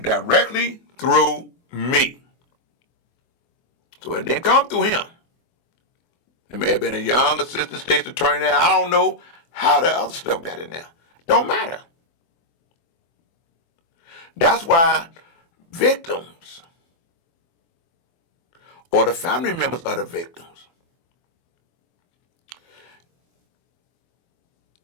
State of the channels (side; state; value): right; late; 24 ms